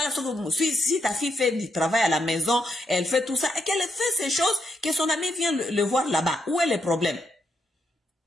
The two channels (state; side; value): normal; both; correlation 0.80